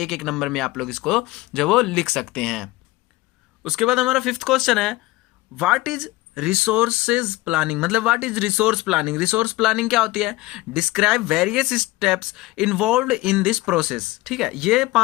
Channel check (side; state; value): right; quieter; 19.4 dB